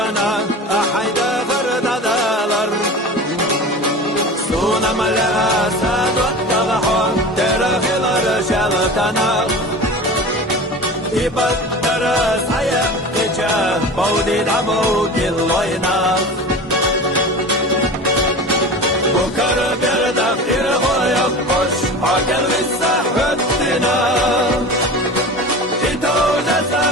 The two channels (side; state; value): both; normal; correlation 0.34